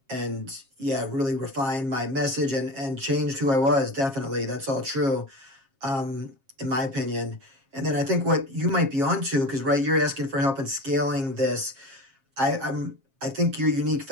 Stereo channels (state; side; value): late; left; 7.4 ms